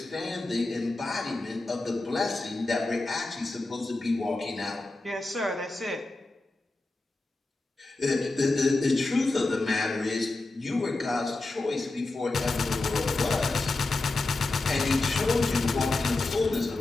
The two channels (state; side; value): quieter; right; 3.1 dB